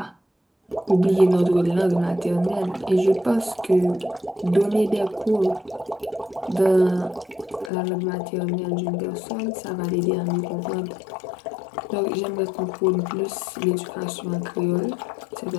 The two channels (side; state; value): right; drops out; at 7.7 s